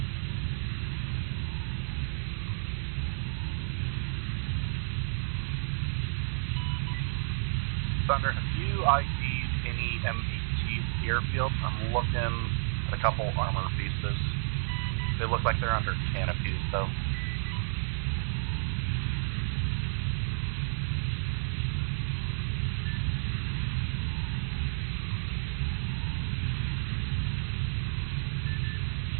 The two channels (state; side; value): silent; left; digital silence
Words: Thunder, have you ID'd any MBTs at the airfield? I'm looking at a couple armor pieces. They look like they're under canopies, though.